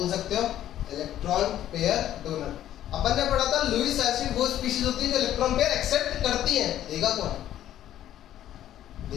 सकते हो, इलेक्ट्रॉन पेयर डोनर। अपन ने पढ़ा था लुईस एसिड वो स्पीशीज होती है जो इलेक्ट्रॉन पेयर एक्सेप्ट करती है। देगा कौन,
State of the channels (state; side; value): quieter; right; 12.0 dB